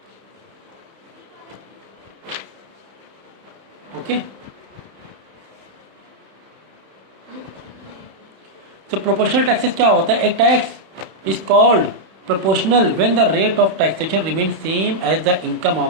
ओके, तो प्रोपोर्शनल टैक्सेस क्या होता है? एक tax is called proportional when the rate of taxation remain same as the income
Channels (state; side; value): late; left; 31 ms